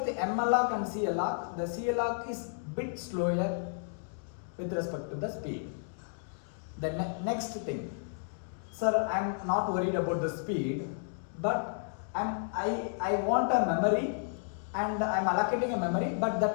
the malloc and calloc, the calloc is bit slower with respect to the speed. The next thing, sir, I am not worried about the speed, but I want a memory and I am allocating a memory, but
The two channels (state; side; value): silent; right; digital silence